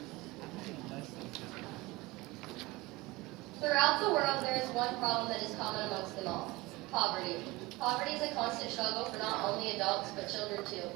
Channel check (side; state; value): left; quieter; 21.6 dB